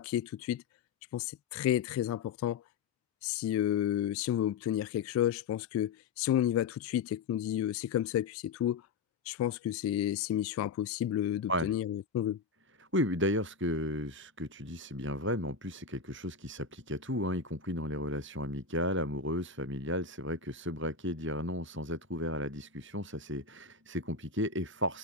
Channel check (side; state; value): right; quieter; 5.5 dB